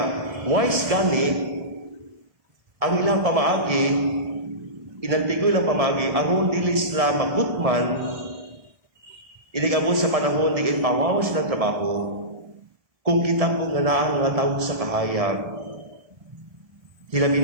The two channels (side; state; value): left; late; 1.7 ms